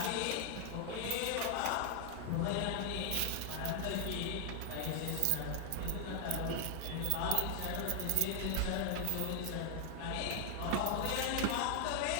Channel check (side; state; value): both; different; correlation 0.00